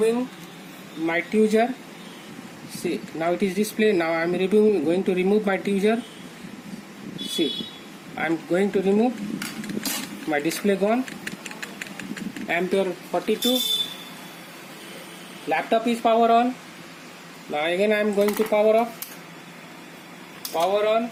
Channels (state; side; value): identical; both; correlation 1.00